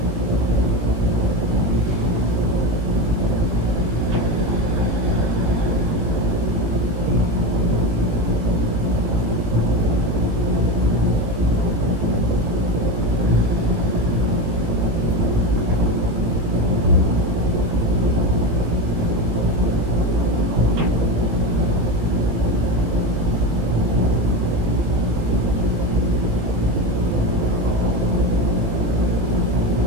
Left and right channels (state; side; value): late; left; 18 ms